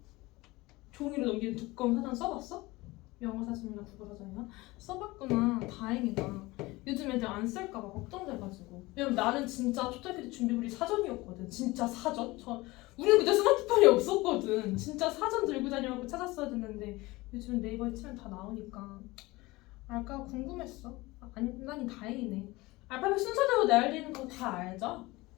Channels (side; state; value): right; quieter; 21.1 dB